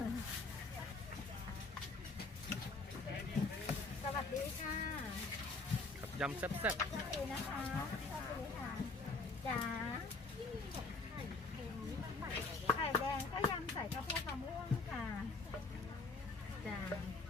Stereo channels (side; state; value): right; quieter; 3.6 dB